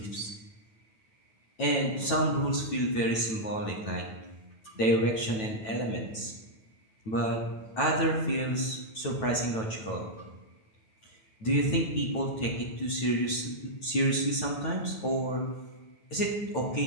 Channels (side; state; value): right; late; 9.1 ms